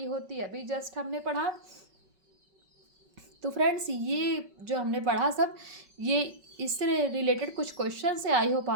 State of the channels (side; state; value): left; late; 5.3 ms